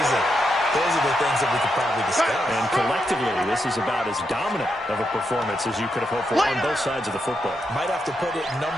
Those are the things that we could probably discuss. And collectively, this is about as dominant of a performance as you could have hoped for on both sides of the football. Might have to put it #1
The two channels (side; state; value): both; normal; correlation 0.83